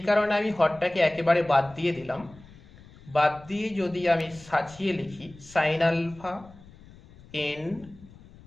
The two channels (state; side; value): noise; left; rumble, 22 dB below the sound